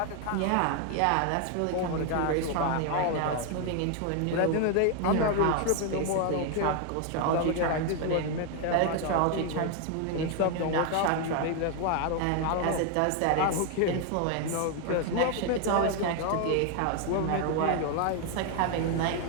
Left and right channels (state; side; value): different; both; correlation 0.01